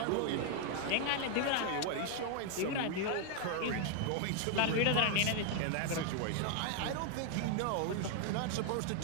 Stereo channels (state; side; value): different; both; correlation 0.00